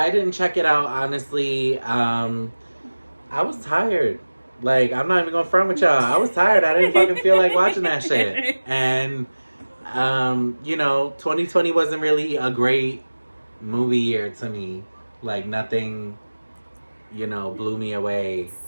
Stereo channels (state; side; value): inverted; both; correlation -1.00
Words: didn't check it out, honestly. I was tired. Like, I'm not even gonna front with y'all. I was tired. I didn't fucking feel like watching that shit. And, you know, 2020 wasn't really a great movie year to me. Like, nothing, you know, blew me away.